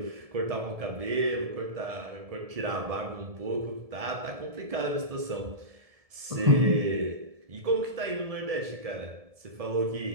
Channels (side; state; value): left; late; 1.7 ms